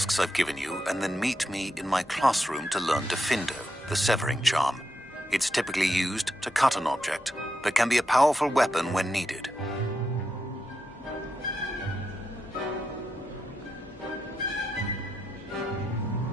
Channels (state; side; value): normal; both; correlation 0.85